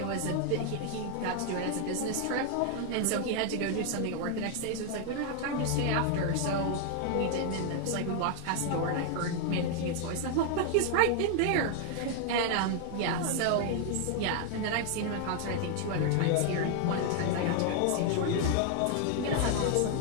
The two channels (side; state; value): both; different; correlation 0.00